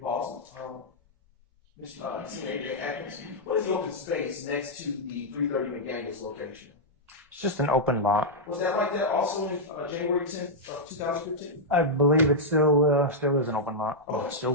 pause, Senior Atkins, what is the open space next to the 330 McDaniel's location? It's just an open lot. Was that like that also in January 10th of 2015? I believe it still is an open lot. Oh, it still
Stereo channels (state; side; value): normal; both; correlation -0.07